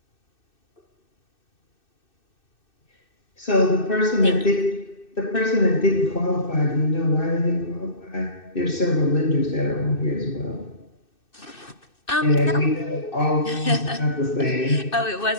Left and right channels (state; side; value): late; right; 2.6 ms